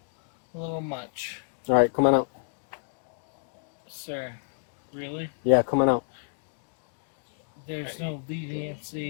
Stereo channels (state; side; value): silent; right; digital silence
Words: much, All right, come on out. sir. Really? Yeah, come on out. There's no